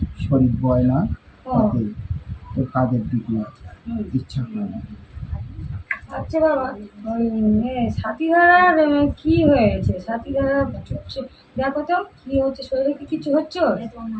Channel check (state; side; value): identical; both; correlation 1.00